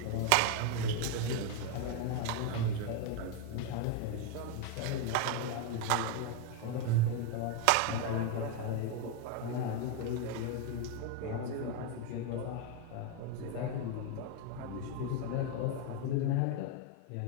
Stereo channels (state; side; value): different; both; correlation 0.01